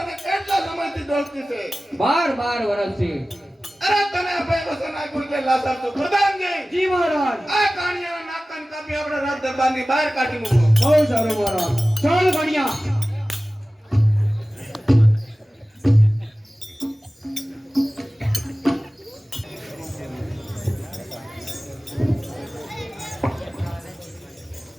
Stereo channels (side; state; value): both; normal; correlation 0.97